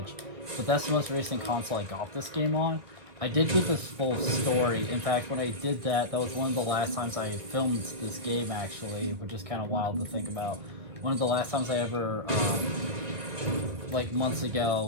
but that's the most recent console I got this game on. I did get this full story. In fact, when I did that, that was one of the last times I filmed this game actually, which is kind of wild to think about. One of the last times I ever, like months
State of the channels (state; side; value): late; left; 2.2 ms